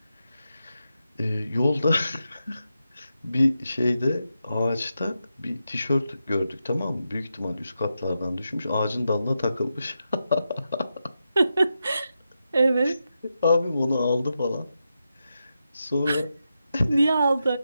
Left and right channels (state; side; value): inverted; both; correlation -0.87